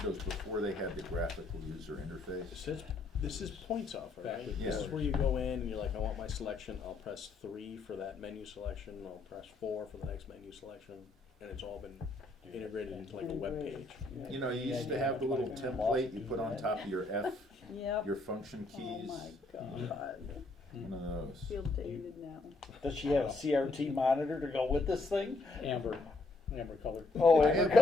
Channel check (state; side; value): quieter; right; 3.3 dB